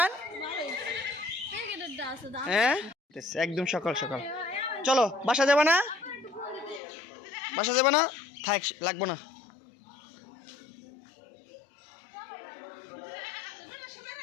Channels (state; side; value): drops out; right; at 6.8 s